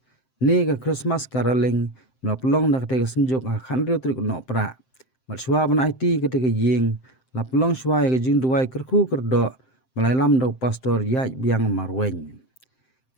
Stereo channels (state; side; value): late; right; 7.7 ms